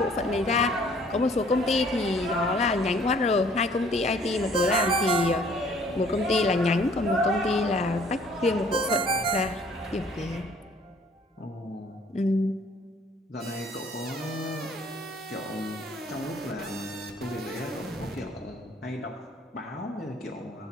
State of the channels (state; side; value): normal; both; correlation 0.58